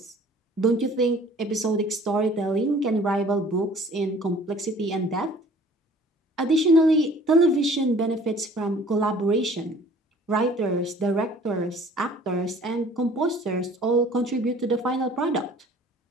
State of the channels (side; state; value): both; normal; correlation 0.51